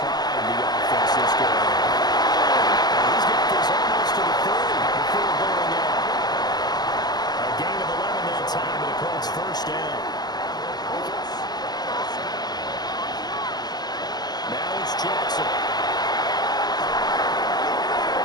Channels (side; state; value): right; late; 0.19 ms